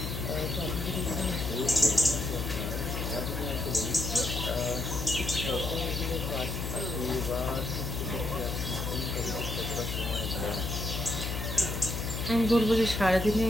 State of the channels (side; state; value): left; noise; hum, 3 dB below the sound